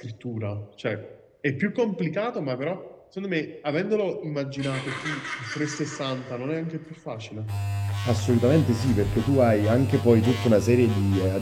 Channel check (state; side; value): identical; both; correlation 1.00